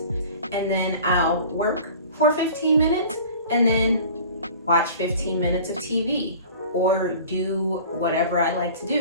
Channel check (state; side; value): inverted; both; correlation -0.43